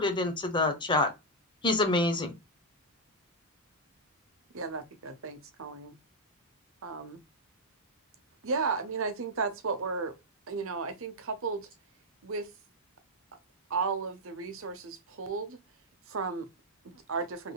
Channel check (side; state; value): both; normal; correlation -0.01